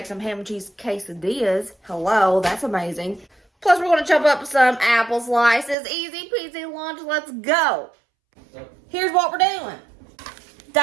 some ham and cheese quesadillas. Hello, that's amazing. Plus, we're going to chop up some apple slices. Easy peasy lunch. Let's go. Here's what we're doing.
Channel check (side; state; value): left; drops out; at 5.8 s